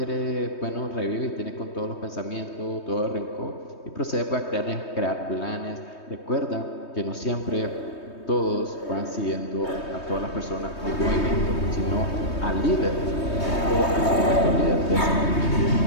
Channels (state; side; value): late; right; 3.2 ms